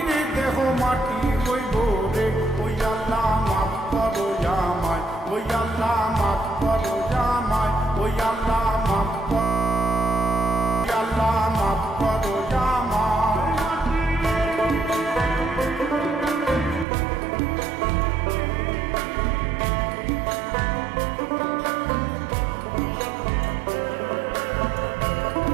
দেহ মাটি হইব রে। ওই আল্লাহ মাফ করো আমায়, ওই আল্লাহ মাফ করো আমায়, ওই আল্লাহ মাফ করো, আল্লাহ মাফ করো আমায়।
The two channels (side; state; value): left; drops out; at 16.9 s